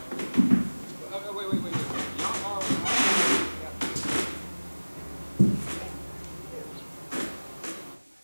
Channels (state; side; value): inverted; both; correlation -1.00